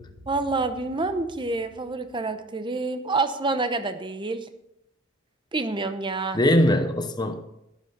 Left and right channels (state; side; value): normal; both; correlation 0.51